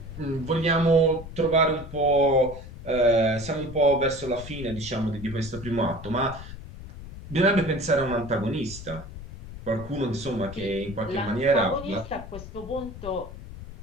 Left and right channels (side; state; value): left; noise; rumble, 13 dB below the sound